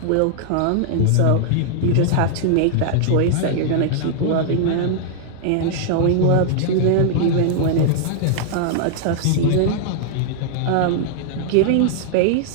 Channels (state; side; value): different; both; correlation -0.01